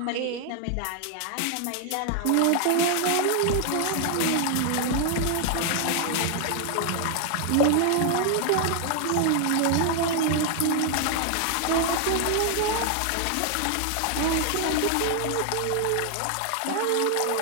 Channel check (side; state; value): both; different; correlation 0.00